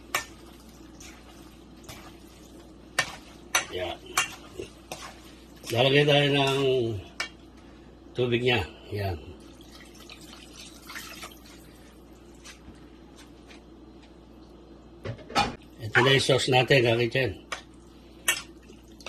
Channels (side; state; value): both; identical; correlation 1.00